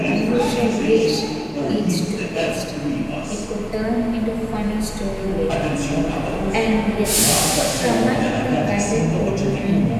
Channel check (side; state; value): both; identical; correlation 1.00